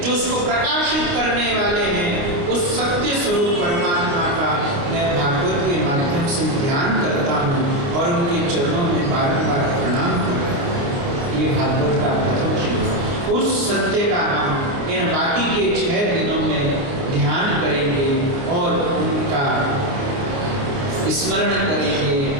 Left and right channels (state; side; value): late; left; 28 ms